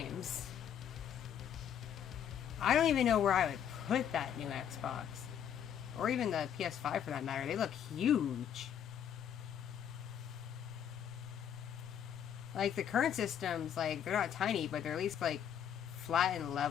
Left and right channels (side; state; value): right; quieter; 9.1 dB